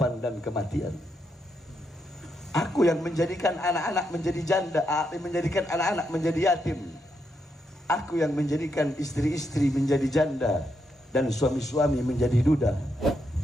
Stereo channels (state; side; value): normal; both; correlation 0.81